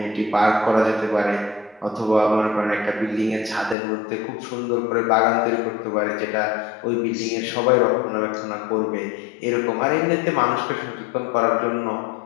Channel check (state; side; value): drops out; right; at 3.8 s